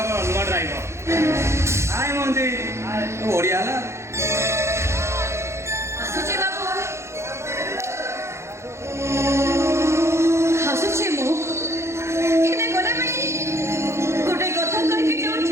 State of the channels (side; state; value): left; late; 0.13 ms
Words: ନୂଆ ଡ୍ରାଇଭର। ଆଏ ମଞ୍ଜି, ଓଡ଼ିଆ ହେଲା। ଆସୁଛି ବାବୁ, ଆସୁଛି ମୁଁ। ହେଲେ ଗଲାବେଳେ ଗୋଟେ କଥା କହିକି